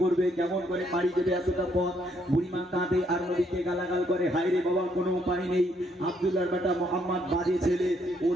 করবে, কেমন করে পাড়ি দেবে এতটা পথ? বুড়িমা কাঁদে আর নবীকে গালাগাল করে, হায় রে বাবা কোনো উপায় নেই, আব্দুল্লাহর বেটা মোহাম্মদ বাজে ছেলে,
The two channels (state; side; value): normal; both; correlation 0.71